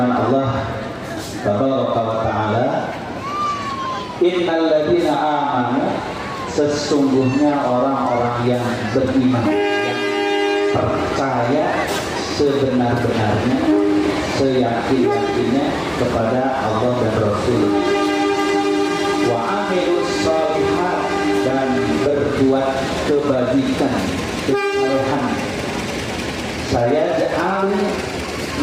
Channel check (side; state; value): both; identical; correlation 1.00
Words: Allah Tabaraka wa Ta'ala, innal ladzina amanu, sesungguhnya orang-orang yang beriman, yang percaya sebenar-benarnya, seyakin-yakinnya kepada Allah dan Rasul. Wa amilus shalihat, dan berbuat kebajikan, kesalehan. Saya ja'al,